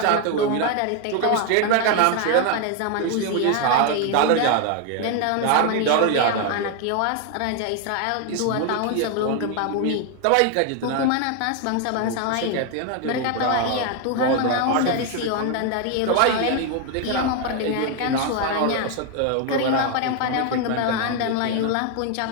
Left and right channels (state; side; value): different; both; correlation 0.01